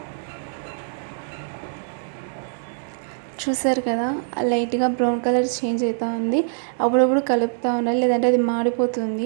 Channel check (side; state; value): left; silent; digital silence